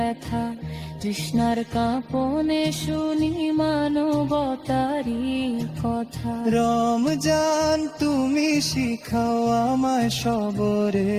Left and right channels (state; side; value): identical; both; correlation 1.00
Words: তৃষ্ণার কাঁপনে শুনি মানবতারি কথা। রমজান তুমি শিখাও আমায়